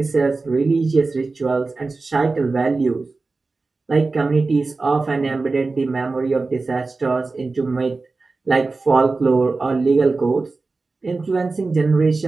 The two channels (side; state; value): left; quieter; 3.8 dB